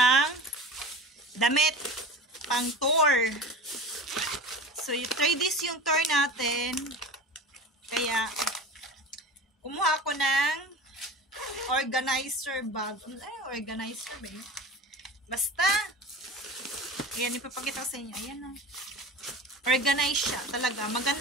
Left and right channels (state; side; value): normal; both; correlation 0.34